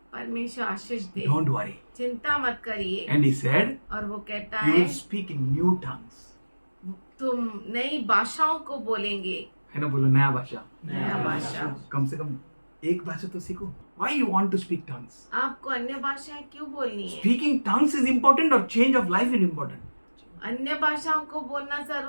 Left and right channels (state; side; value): inverted; both; correlation -1.00